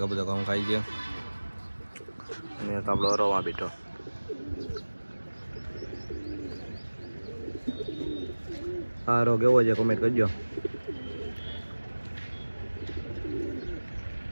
કબૂતર ઘઉં ખાઈ છે અને તો આપણો હરોમાં બેઠો. હારો કેવો છે કમેન્ટ કરજો.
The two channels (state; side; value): inverted; both; correlation -1.00